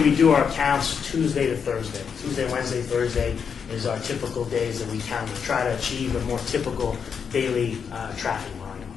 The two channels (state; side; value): quieter; right; 6.7 dB